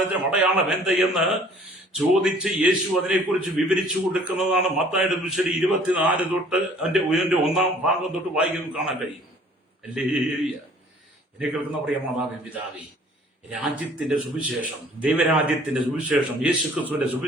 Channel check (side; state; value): both; normal; correlation 0.54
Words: അടയാളം എന്തെന്ന് ചോദിച്ച് യേശു അതിനെക്കുറിച്ച് വിവരിച്ചു കൊടുക്കുന്നതാണ് മത്തായിയുടെ സുവിശേഷം 24 തൊട്ട് അതിന്റെ 1-ാം ഭാഗം തൊട്ട് വായിക്കുന്നത് കാണാൻ കഴിയും. ഹല്ലേലൂയ. എന്നെ കേൾക്കുന്ന പ്രിയ മാതാവേ, പിതാവേ, രാജ്യത്തിന്റെ സുവിശേഷം, ദൈവരാജ്യത്തിന്റെ സുവിശേഷം, യേശുക്രിസ്തുവിന്റെ